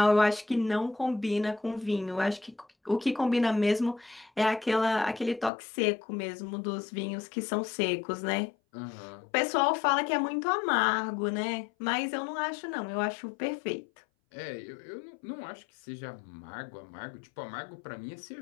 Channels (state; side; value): drops out; right; at 5.5 s